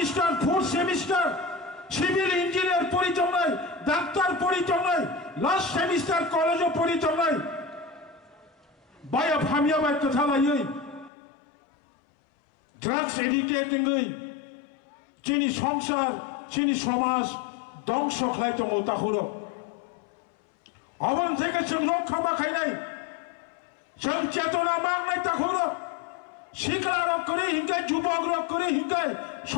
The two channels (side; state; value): right; drops out; at 11.1 s